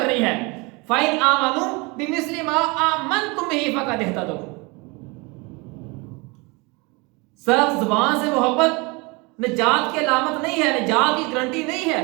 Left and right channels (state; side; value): quieter; left; 27.2 dB